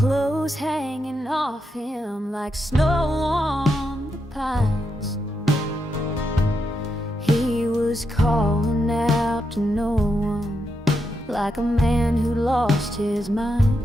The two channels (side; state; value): both; normal; correlation 0.83